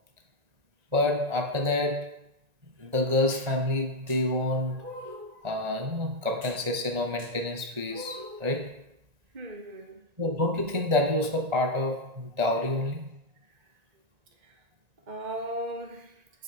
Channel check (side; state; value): left; late; 1.9 ms